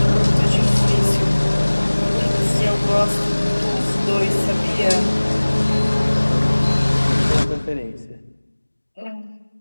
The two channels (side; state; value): both; inverted; correlation -1.00